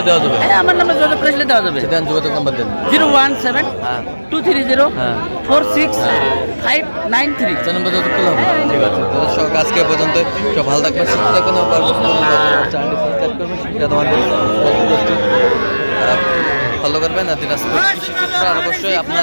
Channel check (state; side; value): inverted; both; correlation -1.00